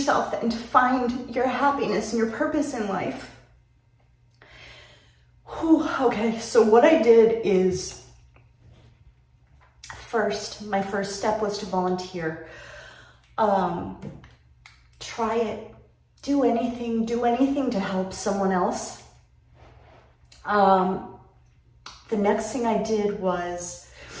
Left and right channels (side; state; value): both; identical; correlation 1.00